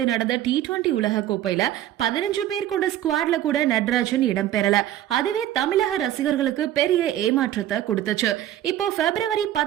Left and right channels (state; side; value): quieter; left; 12.5 dB